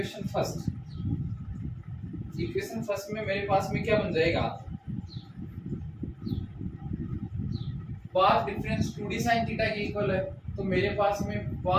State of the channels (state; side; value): identical; both; correlation 1.00